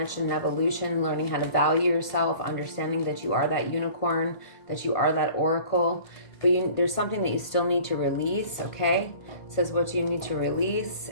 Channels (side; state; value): right; late; 1.8 ms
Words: and evolution, learning how to value yourself, understanding that you are that unicorn, that you are that oracle. But there's something that you still need to release, okay? It says what you need to release,